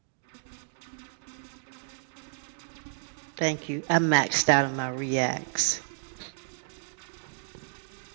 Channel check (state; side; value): silent; left; digital silence